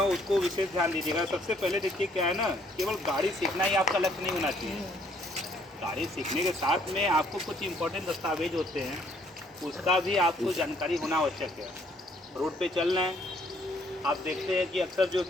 उसको विशेष ध्यान दीजिएगा। सबसे पहले देखिए क्या है ना, केवल गाड़ी सीखना ही आपका लक्ष्य नहीं होना चाहिए। गाड़ी सीखने के साथ में आपको कुछ इम्पोर्टेंट दस्तावेज होते हैं, उसका भी आपको जानकारी होना आवश्यक है। रोड पे चलना है, आप देखते हैं कि अक्सर जो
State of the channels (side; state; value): both; normal; correlation 0.65